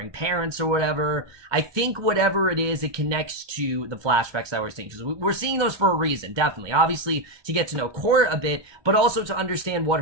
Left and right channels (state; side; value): late; left; 1.2 ms